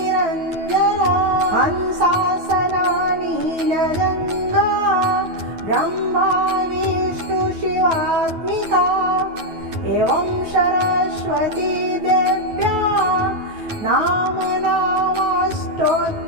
हंसासना नीलजङ्गा ब्रह्मा विष्णु शिवात्मिका एवं सरस्वती देव्या नामनामस्तोत्रं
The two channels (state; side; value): late; left; 9.3 ms